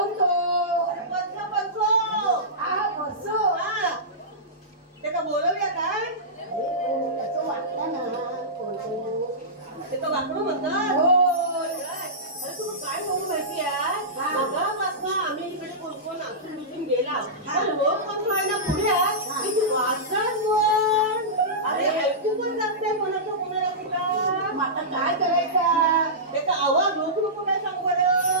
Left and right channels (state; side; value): normal; both; correlation -0.17